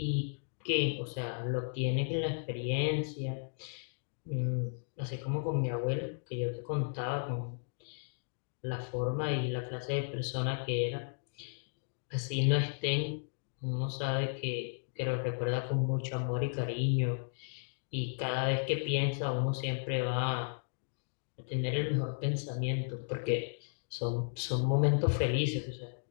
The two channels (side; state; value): right; silent; digital silence